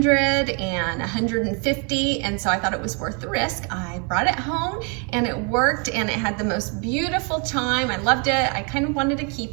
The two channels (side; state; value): left; quieter; 35.8 dB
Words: and 150. And so I thought it was worth the risk. I brought it home and it worked, and it had the most beautiful chime. I loved it. I kind of wanted to